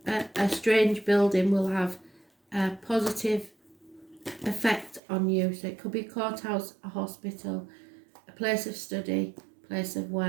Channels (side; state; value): left; drops out; at 5.0 s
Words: a strange building will have a positive effect on you. So it could be a courthouse, a hospital, a place of study, place of